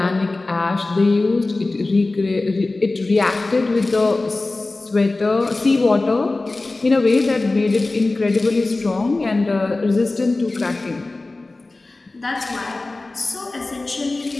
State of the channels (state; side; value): quieter; right; 3.2 dB